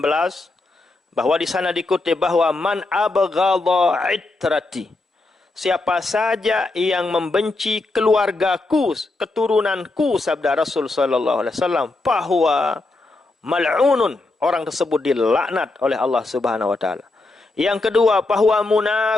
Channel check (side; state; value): right; quieter; 3.1 dB